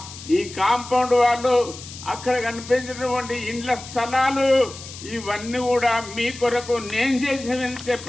ఈ కాంపౌండ్ వాళ్ళు, అక్కడ కనిపించేటువంటి ఇండ్ల స్థలాలు, ఇవన్నీ కూడా మీ కొరకు నేను చేసినని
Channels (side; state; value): left; noise; hiss, 14 dB below the sound